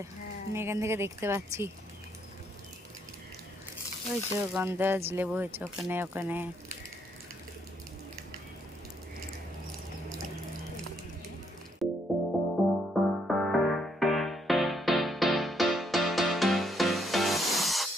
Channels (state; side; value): normal; both; correlation 0.72